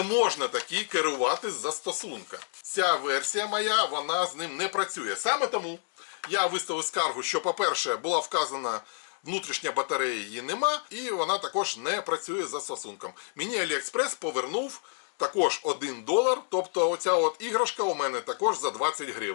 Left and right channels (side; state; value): right; silent; 59 dB below the other